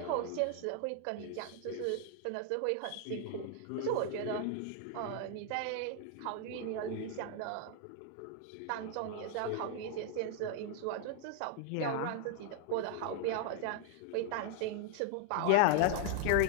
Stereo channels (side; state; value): both; different; correlation 0.00